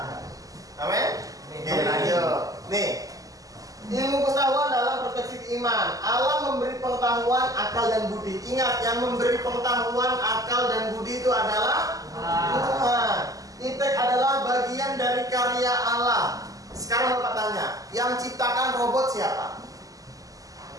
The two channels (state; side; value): late; left; 0.17 ms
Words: Amin. Oke, lanjut. Nih, ilmu pengetahuan dalam perspektif iman. Allah memberi pengetahuan, akal dan budi. Ingat, yang memberi pengetahuan, akal dan budi itu adalah Tuhan. Iptek adalah bagian dari karya Allah. Sekarang Bapak tanya, yang ciptakan robot siapa?